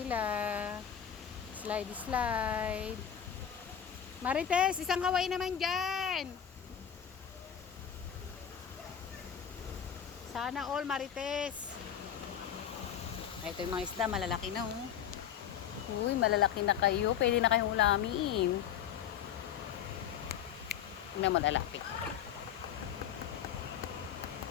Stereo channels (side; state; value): right; quieter; 9.0 dB